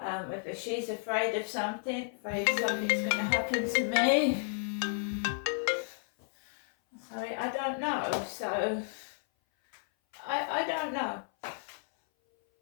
she's afraid of something, afraid something's going to happen to me. Sorry, I don't know. So, I don't know.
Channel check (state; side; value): silent; right; 56 dB below the other